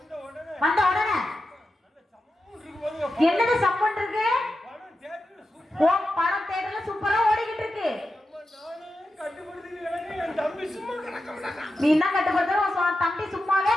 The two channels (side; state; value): both; normal; correlation 0.90